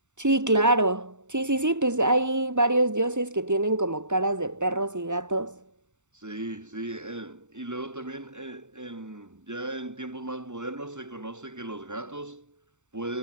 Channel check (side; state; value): left; late; 0.84 ms